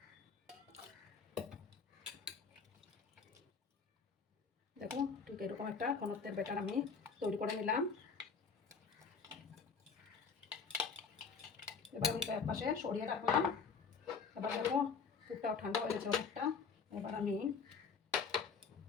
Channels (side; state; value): right; quieter; 5.5 dB